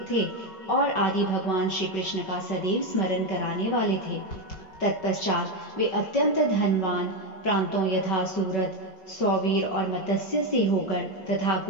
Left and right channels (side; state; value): right; late; 5.3 ms